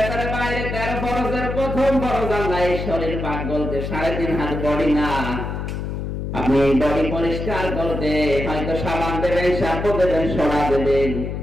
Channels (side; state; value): left; noise; hum, 4 dB below the sound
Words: বাইরে 13 ফরজের প্রথম ফরজ আল্লাহ এই শরীর পাক বলতে 3.5 হাত বডি না। আপনি বডি পরিষ্কার করতে হয়তো সাবান দেবেন, শ্যাম্পু দেবেন, সোডা দেবেন,